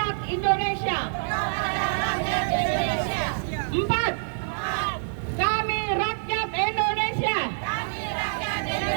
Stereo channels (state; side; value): silent; left; digital silence